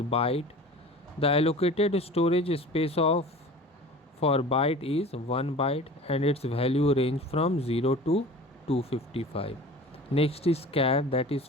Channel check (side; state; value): both; normal; correlation 0.40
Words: byte. The allocated storage space of for byte is 1 byte and its value range from 0 to 255. Next is char, that is